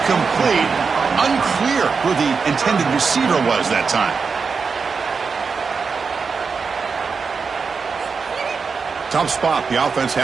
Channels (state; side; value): quieter; left; 5.2 dB